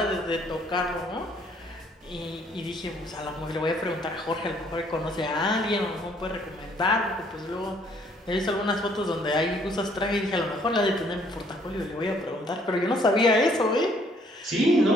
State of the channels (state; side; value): normal; both; correlation 0.63